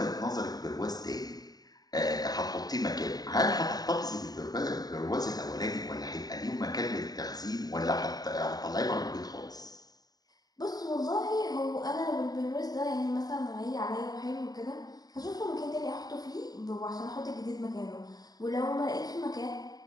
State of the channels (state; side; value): late; right; 0.19 ms